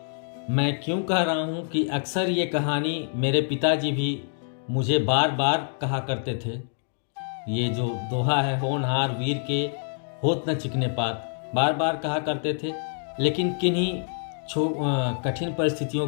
मैं क्यों कह रहा हूँ कि अक्सर ये कहानी मेरे पिताजी भी मुझे बार बार कहा करते थे। ये जो दोहा है, होनहार वीर के होत न चिकने पात, बार बार कहा करते थे, लेकिन किन्हीं कठिन परिस्थितियों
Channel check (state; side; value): silent; right; digital silence